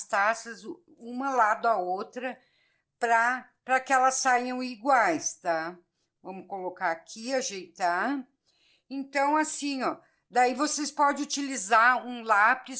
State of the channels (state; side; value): identical; both; correlation 1.00